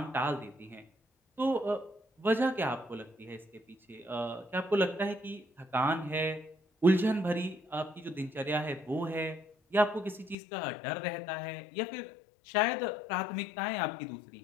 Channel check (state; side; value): drops out; right; at 10.4 s